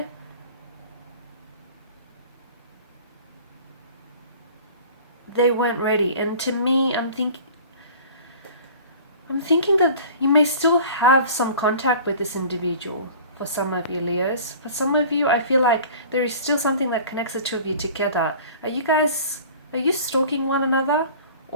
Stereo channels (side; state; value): both; inverted; correlation -0.43